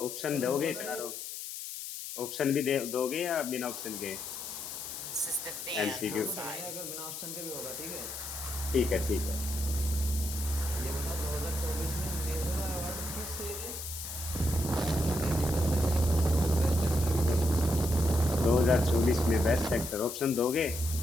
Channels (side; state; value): left; noise; hiss, 8 dB below the sound